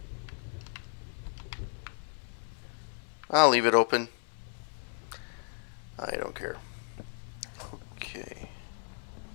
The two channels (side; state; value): right; silent; 55 dB below the other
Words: I'll leave it open. I don't care. Okay.